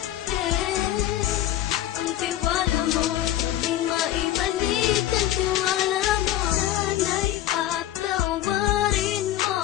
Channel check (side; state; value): right; quieter; 13.1 dB